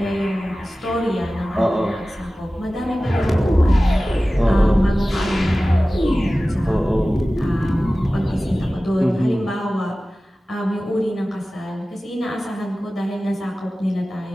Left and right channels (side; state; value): both; normal; correlation 0.96